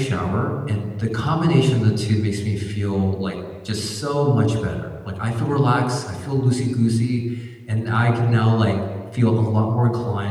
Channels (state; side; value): identical; both; correlation 1.00